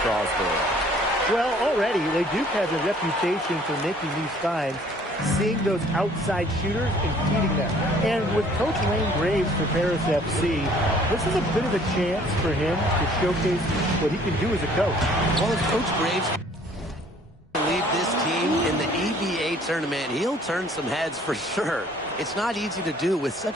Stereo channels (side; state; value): both; normal; correlation 0.57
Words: Well, already, Leduc has a reputation for making these finds, seeing those outside shooters and feeding them. And with Coach Wayne Graves for Paris FC, this is a bit of a chance for him to showcase what he can do as a coach. Well, if Coach Graves lead this team in the EBA tournament, he'll turn some heads for sure. It's not easy to do with